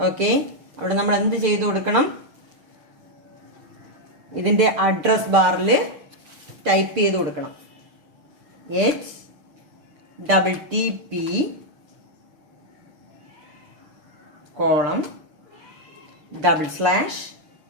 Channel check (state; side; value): late; left; 6.8 ms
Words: Okay, അവിടെ നമ്മൾ എന്ത് ചെയ്തു കൊടുക്കണം? ഇതിന്റെ അഡ്രസ് ബാറിൽ ടൈപ്പ് ചെയ്ത് കൊടുക്കണം. HTTP